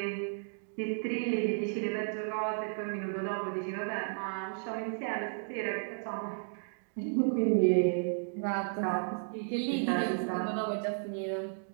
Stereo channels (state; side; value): silent; left; digital silence